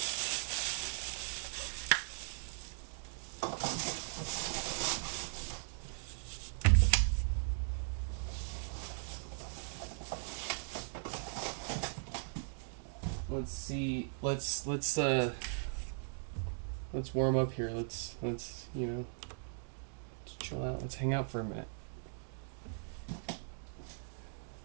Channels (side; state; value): left; silent; digital silence